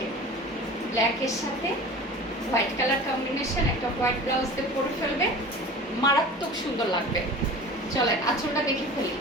ব্ল্যাকের সাথে হোয়াইট কালার কম্বিনেশন, একটা হোয়াইট ব্লাউজ দিয়ে পরে ফেলবে, মারাত্মক সুন্দর লাগবে। চলেন আঁচলটা দেখে ফেলি।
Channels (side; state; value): both; normal; correlation 0.38